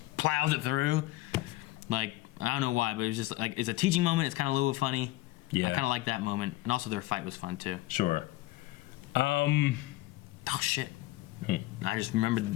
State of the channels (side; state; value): right; quieter; 17.8 dB